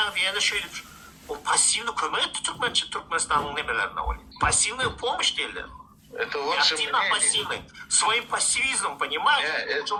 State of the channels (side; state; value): both; identical; correlation 1.00